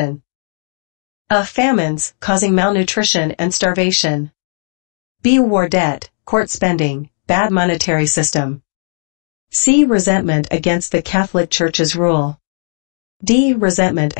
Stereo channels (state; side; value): silent; right; digital silence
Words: A. Famines, causing malnutrition and starvation. B. War debt, court spending, bad monetary system. C. Resentment against the Catholic Church's rule. D. Resentment